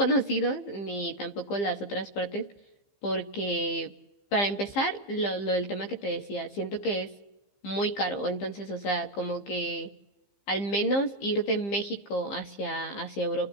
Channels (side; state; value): right; late; 15 ms